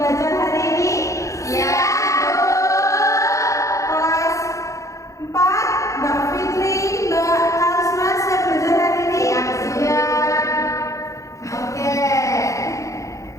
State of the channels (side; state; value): right; late; 0.15 ms